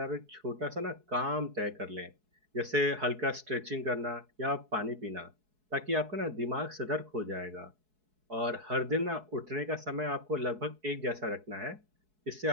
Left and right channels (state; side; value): late; left; 4.7 ms